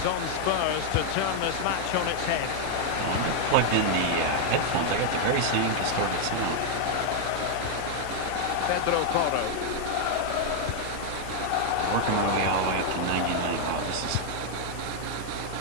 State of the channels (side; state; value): both; different; correlation 0.00